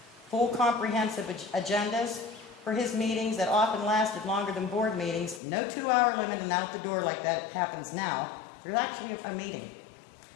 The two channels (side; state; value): right; drops out; at 5.4 s